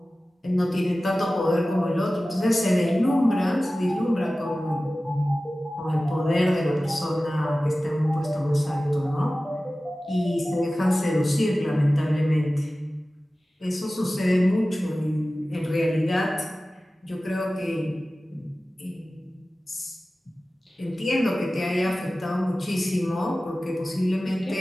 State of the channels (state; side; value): normal; both; correlation 0.96